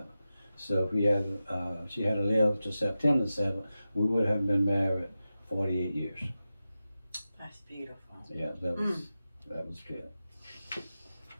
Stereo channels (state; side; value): inverted; both; correlation -0.93